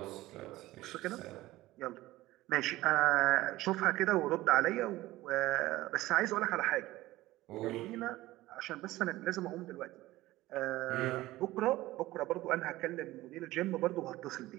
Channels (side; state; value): left; quieter; 17.3 dB